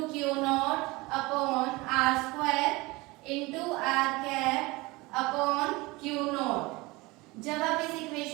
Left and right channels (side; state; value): left; quieter; 22.8 dB